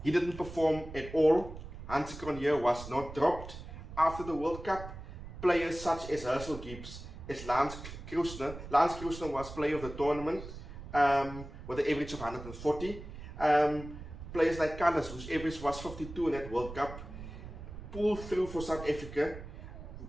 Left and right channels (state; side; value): noise; right; rumble, 12 dB below the sound